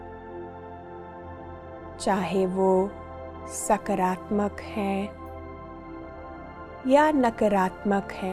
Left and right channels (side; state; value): both; identical; correlation 1.00